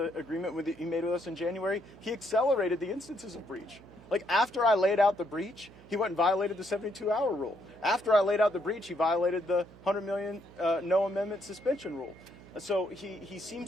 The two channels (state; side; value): noise; right; hum, 21 dB below the sound